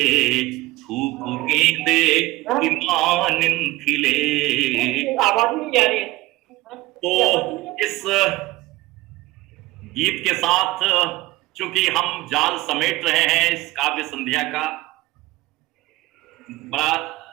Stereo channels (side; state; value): left; quieter; 18.8 dB